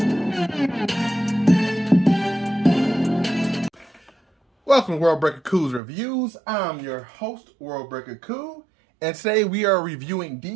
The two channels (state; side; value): drops out; left; at 5.8 s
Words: Welcome to World Breaker Cool's Reviews. I'm your host, World Breaker Cool, and today we are reviewing